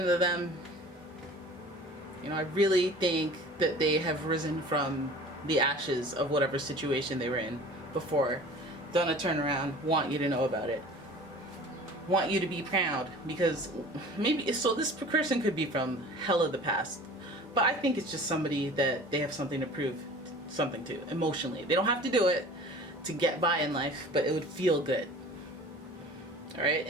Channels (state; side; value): normal; both; correlation 0.43